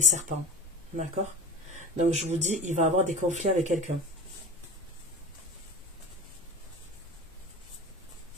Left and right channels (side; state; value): both; normal; correlation 0.32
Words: D'accord? Donc, je vous dis, il va avoir des conflits avec quelqu'un.